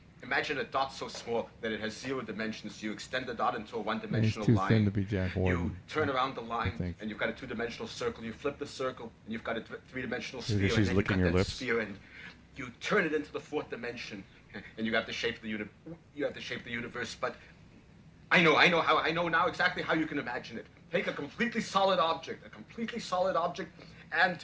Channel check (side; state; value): both; identical; correlation 1.00